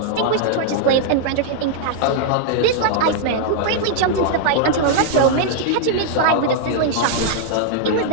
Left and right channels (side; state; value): both; different; correlation -0.01